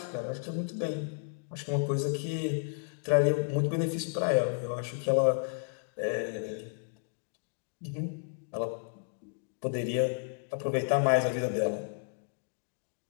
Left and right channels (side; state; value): right; silent; digital silence